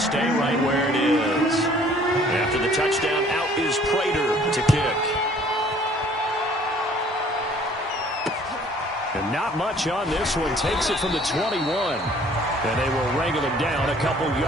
right where it is. After the touchdown, out is Prater to kick. And not much on this one. Takes it from the 21. And they will wrangle him down a couple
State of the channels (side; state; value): both; normal; correlation 0.56